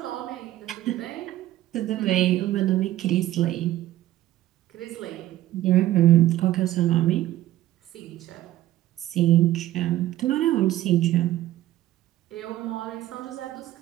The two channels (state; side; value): quieter; left; 14.4 dB